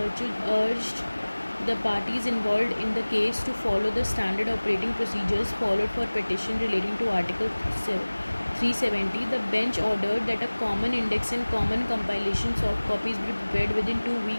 urged the parties involved in the case to follow the standard operating procedures followed for petition relating to Article 370. The bench ordered that a common index and common compilation soft copies be prepared within 2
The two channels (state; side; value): inverted; both; correlation -1.00